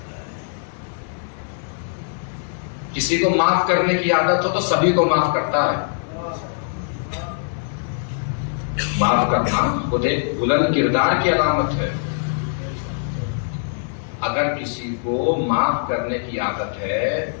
کسی کو معاف کرنے کی عادت ہو تو سبھی کو معاف کرتا ہے۔ معاف کرنا خود ایک بلند کردار کی علامت ہے۔ اگر کسی کو معاف کرنے کی عادت ہے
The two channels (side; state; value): right; silent; 64 dB below the other